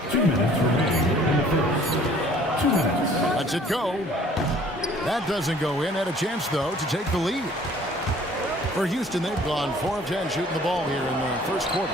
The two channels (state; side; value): normal; both; correlation 0.54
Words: 2 minutes remaining in the first. 2 minutes. Lets it go. That doesn't go in. Had a chance, though, to take the lead. For Houston, they've gone 4 of 10 shooting the ball here in the first quarter.